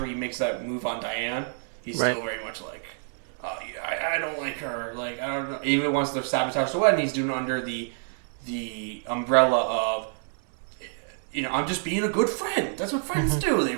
he makes that move on Diane. He's still very much like, I don't like her. Like, I don't know. Even once they're sabotaged the wedding, he's doing it under the umbrella of, I'm just being a good friend. That's what friends do. They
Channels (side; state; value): left; silent; digital silence